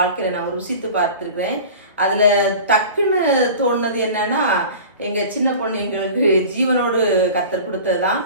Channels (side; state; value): both; inverted; correlation -0.38